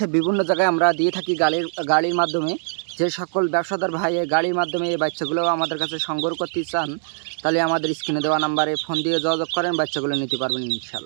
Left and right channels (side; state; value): left; silent; digital silence